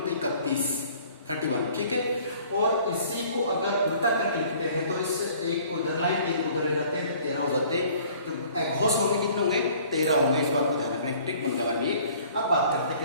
है, 31। ठीक है, और इसी को अगर उल्टा करके लिखते हैं तो इस एक को इधर लाइन, 3 को उधर ले जाते हैं तो 13 हो जाते हैं। तो अघोष होंगे कितने होंगे, 13 होंगे। इस बात को ध्यान रखना, एक ट्रिक बन गया हमारे लिए। अब बात करते हैं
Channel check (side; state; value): both; inverted; correlation -0.53